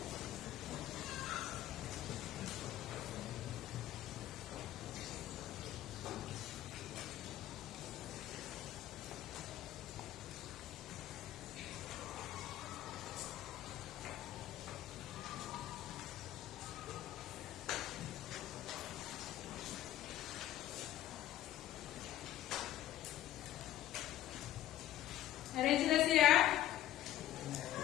Ada yang sudah siap?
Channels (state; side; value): quieter; right; 13.2 dB